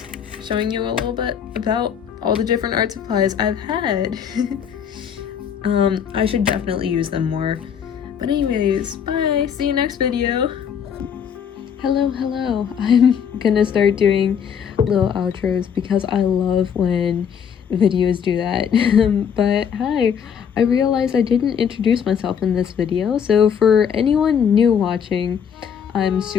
showing you a little bit about all the different art supplies I've had. I should definitely use them more. But anyways, bye! See you next video! Hello! I'm gonna start doing little outros because I love when videos do that. But hi, I realized I didn't introduce myself in this video, so for anyone new watching, I'm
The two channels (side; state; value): right; quieter; 7.8 dB